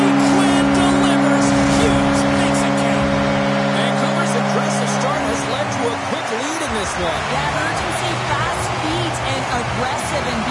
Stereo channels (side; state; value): both; identical; correlation 1.00